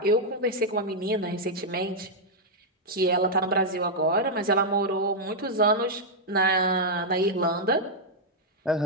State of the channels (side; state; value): both; normal; correlation -0.04